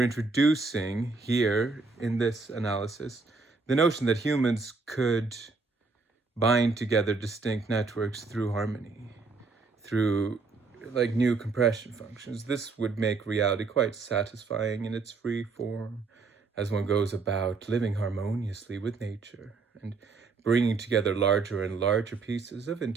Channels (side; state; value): left; quieter; 4.1 dB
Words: introducing here in this analysis the notion that humans could bind together distinct networks through harmony, through like new compression functions. This would make reality quite satisfying in its free form as one goes about living harmoniously with nature and bringing together larger and larger pieces of